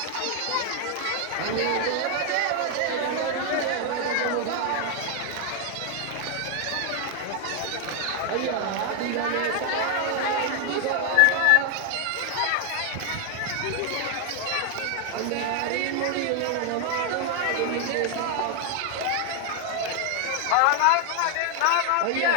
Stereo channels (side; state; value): both; different; correlation 0.01